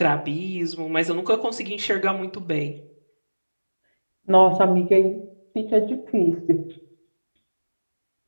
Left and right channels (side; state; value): both; inverted; correlation -1.00